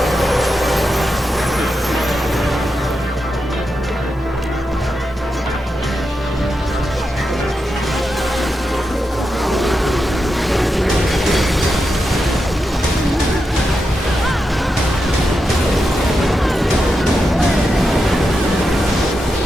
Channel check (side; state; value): both; normal; correlation 0.87